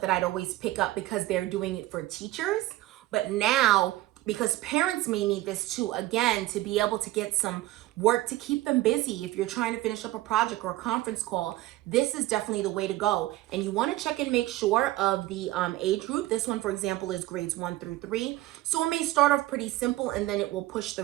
that I'd always pick up because they're doing it for teachers. But now, because parents may need this too, again, to be able to get some work to keep them busy. If you're trying to finish up a project or a conference call, this is definitely the way to go. And you want to check and make sure of the age group. This one, for example, is grades 1 through 3. So it may start off pretty simple, and then it will push the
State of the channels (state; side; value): quieter; left; 17.0 dB